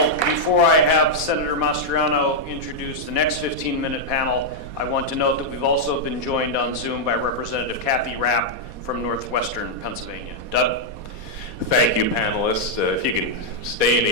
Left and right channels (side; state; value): left; late; 4.2 ms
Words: before I have Senator Mastriano introduce the next 15-minute panel, I want to note that we've also been joined on Zoom by Representative Kathy Rapp from Northwestern Pennsylvania. Doug? Thank you, panelists. If you can stay in